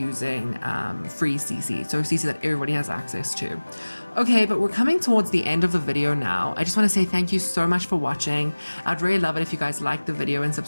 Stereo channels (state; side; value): inverted; both; correlation -1.00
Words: free CC, so CC that everybody has access to. Okay, but we're coming towards the end of the video now. I just want to say thank you so much for watching. I'd really love it if you guys like the video and